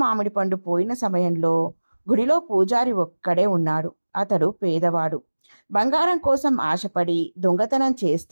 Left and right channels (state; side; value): inverted; both; correlation -1.00